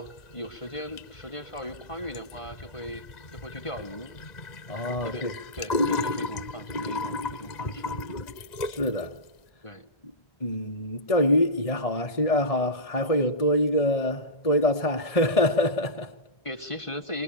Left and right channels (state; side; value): late; right; 1.9 ms